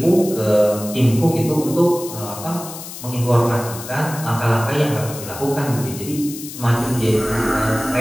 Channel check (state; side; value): noise; left; hiss, 12 dB below the sound